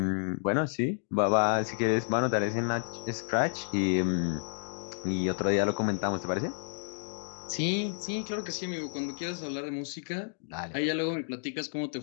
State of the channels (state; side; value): silent; right; digital silence